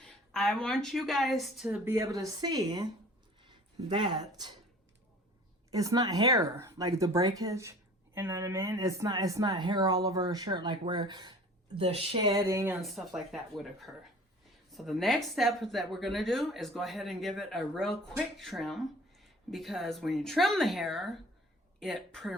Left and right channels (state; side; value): normal; both; correlation 0.46